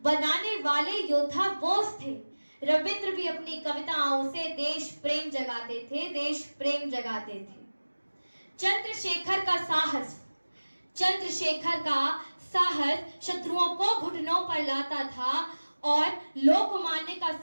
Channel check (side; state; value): both; inverted; correlation -1.00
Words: बनाने वाले योद्धा बोस थे। रविंद्र भी अपनी कविताओं से देश प्रेम जगाते थे, देश प्रेम जगाते थे। चंद्रशेखर का साहस, चंद्रशेखर का साहस शत्रुओं को घुटनों पर लाता था और लोकमान्य का